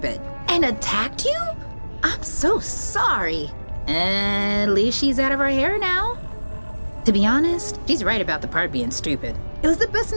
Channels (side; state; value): both; inverted; correlation -1.00